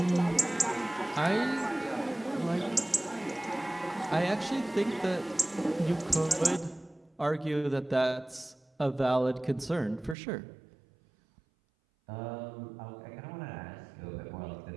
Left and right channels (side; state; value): left; drops out; at 10.2 s